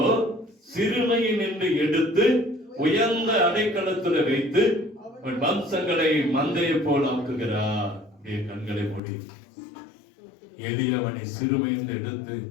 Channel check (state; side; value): drops out; right; at 9.0 s